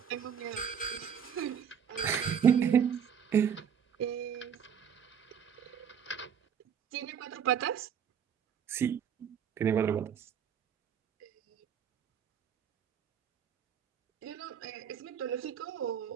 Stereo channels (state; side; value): quieter; left; 7.9 dB